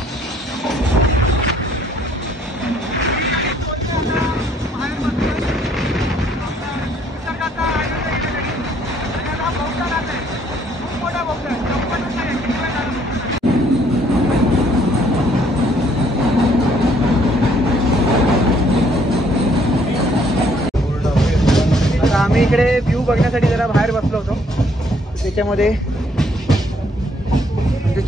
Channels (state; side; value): normal; both; correlation 0.65